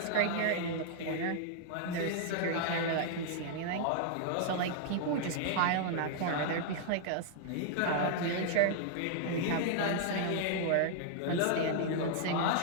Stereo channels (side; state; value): both; different; correlation -0.01